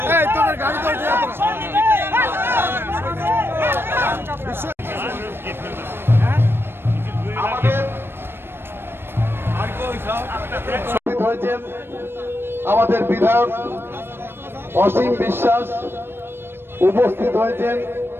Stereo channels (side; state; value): left; late; 0.11 ms